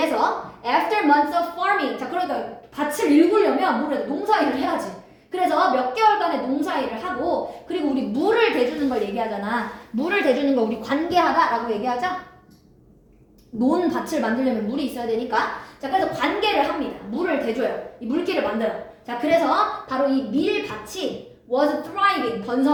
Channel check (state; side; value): identical; both; correlation 1.00